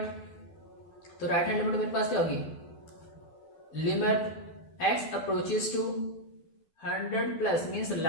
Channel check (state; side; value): late; right; 12 ms